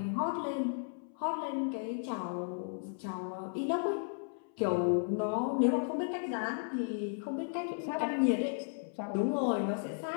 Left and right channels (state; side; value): silent; right; 55 dB below the other